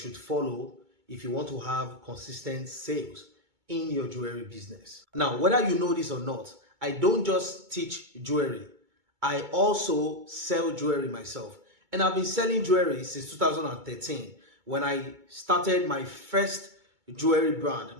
follow if you want to have consistent sales in your jewelry business. Now, whether you know this or not, I don't just teach jewelry, I also sell jewelry myself, and I've been selling jewelry since 2013 when I started my first jewelry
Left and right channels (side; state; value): left; late; 2.2 ms